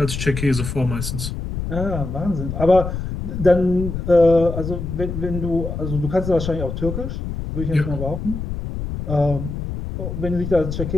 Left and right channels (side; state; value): left; noise; rumble, 5 dB below the sound